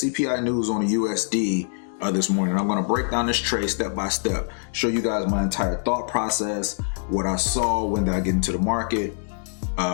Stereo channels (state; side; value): silent; right; digital silence